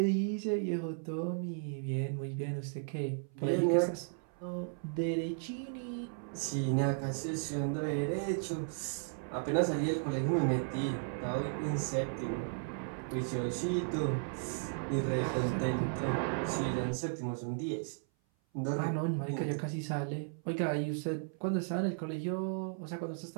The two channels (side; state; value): left; silent; 54 dB below the other